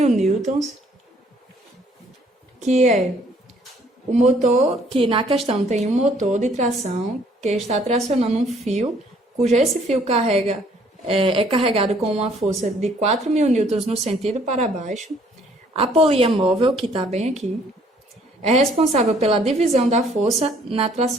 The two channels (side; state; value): both; normal; correlation 0.62